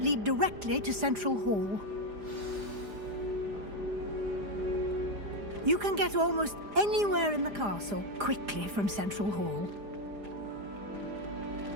directly to Central Hall. You can get almost anywhere in the castle quickly from Central Hall.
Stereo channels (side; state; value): left; late; 4.9 ms